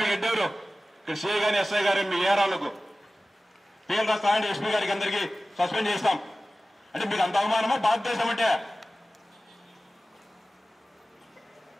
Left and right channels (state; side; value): normal; both; correlation 0.96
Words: ఎడ్డెవరు? ఇక్కడ సిఐ గాని ఎస్ఐ గారు మీ ఏరాలకు పేర్లు రాస్తామంటే ఎస్పీ గారికి అందరికీ సస్పెండ్ చేస్తాం అంటే మీకు అంత అవమానమా భారతదేశం అంటే?